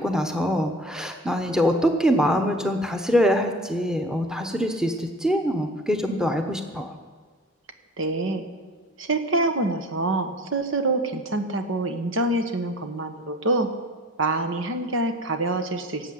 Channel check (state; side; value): normal; both; correlation 0.44